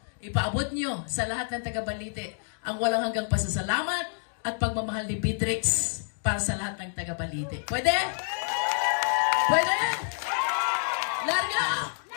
ipaabot nyo sa lahat ng taga Balite ang walang hanggang pasasalamat at pagmamahal ni Beatrix para sa lahat ng taga Balite. Pwede? Pwede? Larga!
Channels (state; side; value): silent; right; digital silence